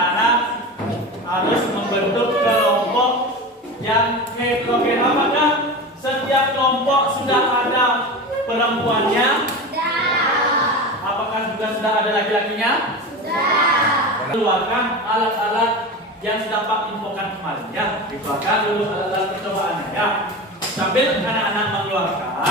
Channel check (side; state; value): both; normal; correlation 0.27